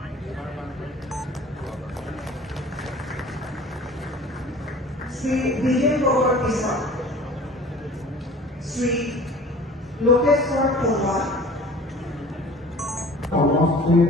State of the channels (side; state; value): both; normal; correlation 0.45